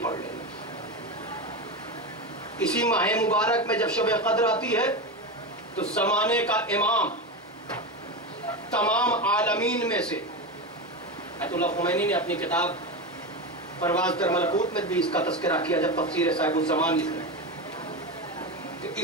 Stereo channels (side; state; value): both; normal; correlation 0.19